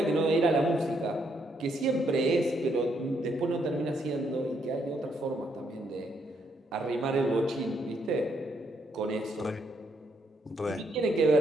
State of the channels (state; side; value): normal; both; correlation 0.74